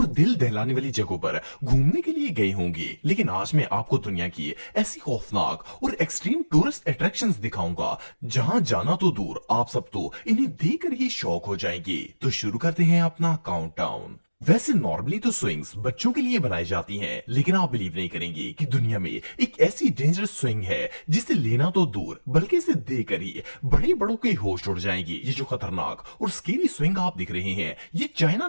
दिल दहलाने वाली जगहों पर घूमने के लिए गए होंगे, लेकिन आज मैं आपको दुनिया की ऐसी खौफनाक और एक्सट्रीम टूरिस्ट अट्रैक्शंस दिखाऊंगा जहां जाना तो दूर, आप सब तो इन्हें देखकर ही शौक हो जाएंगे। तो शुरू करते हैं अपना काउंटडाउन। वैसे नॉर्मली तो स्विंग्स बच्चों के लिए बनाई जाती हैं, लेकिन आप बिलीव नहीं करेंगे कि दुनिया में एक ऐसी डेंजरस स्विंग है जिसे लेना तो दूर बल्कि इसे देकर ही बड़े बड़ों के होश उड़ जाएंगे। ये जो खतरनाक और स्केरी स्विंग आप दिख रहे हैं, ये चाइना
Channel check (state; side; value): inverted; both; correlation -1.00